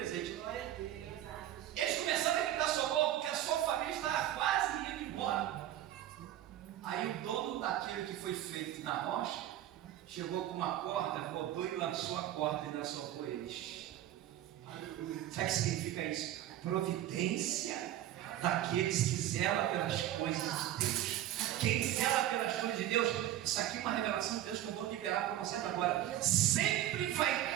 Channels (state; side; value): quieter; left; 12.6 dB